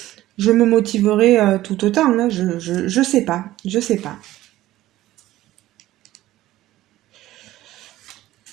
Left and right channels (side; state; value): left; quieter; 15.4 dB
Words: je me motiverai tout autant, hein. Je sais pas. Je sais pas.